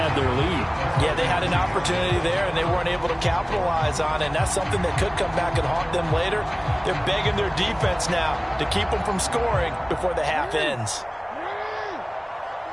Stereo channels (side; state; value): both; identical; correlation 1.00